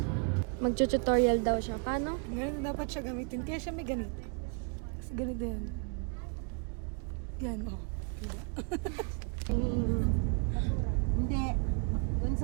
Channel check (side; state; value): left; quieter; 38.6 dB